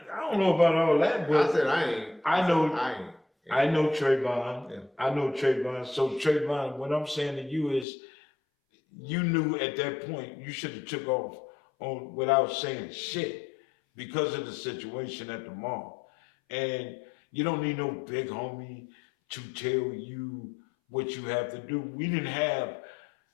don't know about all that, but I said I ain't. I know. I ain't. I know Trayvon. Yeah. I know Trayvon. So Trayvon, what I'm saying to you is, you knew at that point you should have took off on without saying shit because of the situation at the mall. And you don't need no big homie to tell you what you have to do. We didn't have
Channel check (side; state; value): right; drops out; at 7.9 s